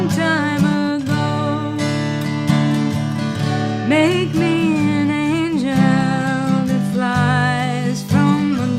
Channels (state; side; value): identical; both; correlation 1.00